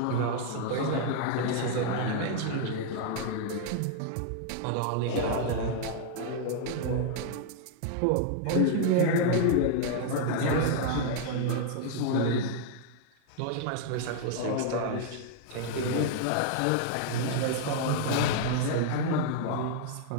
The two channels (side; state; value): both; different; correlation -0.01